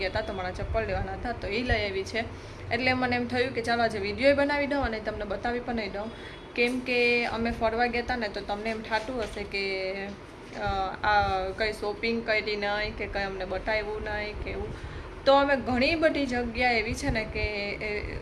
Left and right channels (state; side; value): identical; both; correlation 1.00